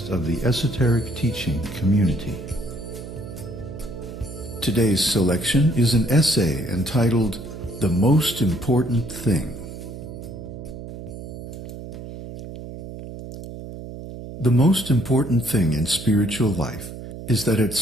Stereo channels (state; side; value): noise; right; hum, 11 dB below the sound